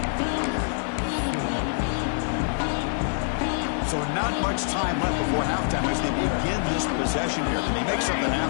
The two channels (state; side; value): silent; right; 58 dB below the other